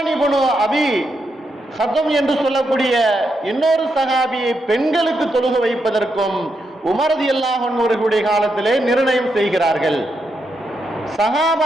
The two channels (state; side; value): normal; both; correlation 0.82